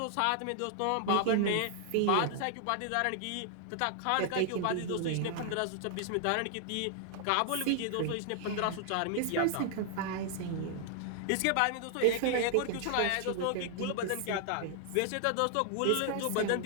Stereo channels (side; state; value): both; different; correlation 0.00